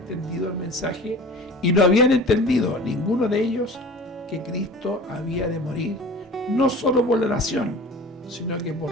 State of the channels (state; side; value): normal; both; correlation 0.40